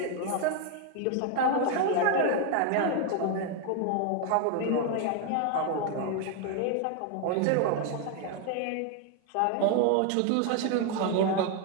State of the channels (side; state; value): both; different; correlation 0.01